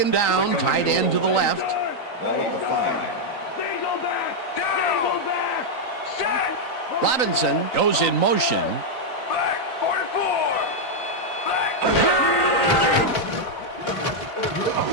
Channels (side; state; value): right; late; 3.9 ms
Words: down, tight end to the left. Ball 5. Robinson goes in motion.